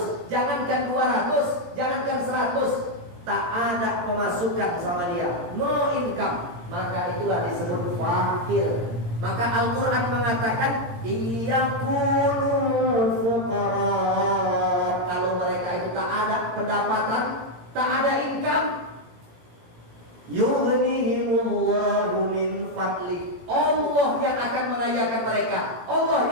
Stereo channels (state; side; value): late; left; 17 ms